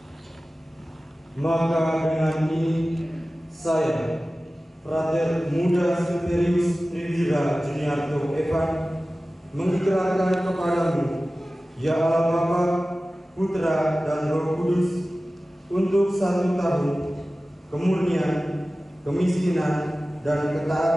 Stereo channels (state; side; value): normal; both; correlation 0.96